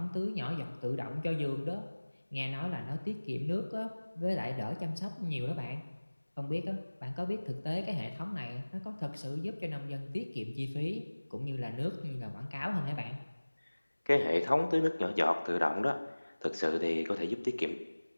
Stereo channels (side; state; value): both; inverted; correlation -1.00